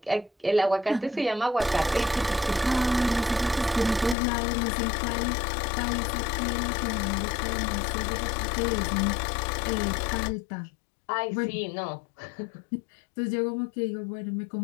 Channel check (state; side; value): drops out; right; at 4.2 s